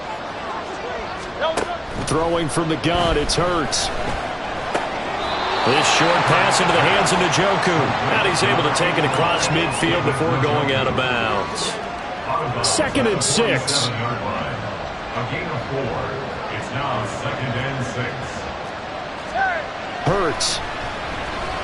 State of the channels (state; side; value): identical; both; correlation 1.00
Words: throwing from the gun, it's Hurts. This short pass into the hands of Njoku. And he's able to take it across midfield before going out of bounds. 2nd and 6. A gain of 4. It's now 2nd and 6. Hurts.